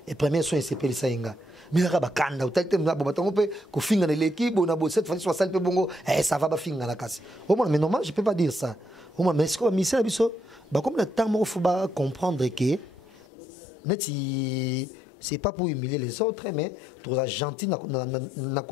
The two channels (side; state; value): right; drops out; at 13.2 s